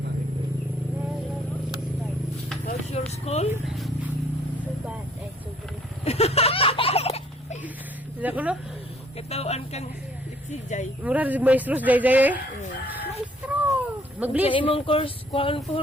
Jay. Mura rin maestros day day eh. Maestro. Sa Mag-bliss. imong course, kuhaan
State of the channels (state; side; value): normal; both; correlation 0.61